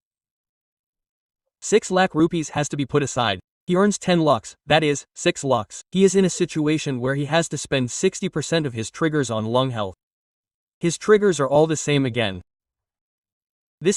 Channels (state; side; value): identical; both; correlation 1.00